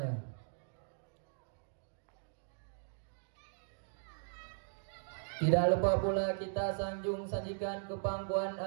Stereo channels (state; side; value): silent; left; digital silence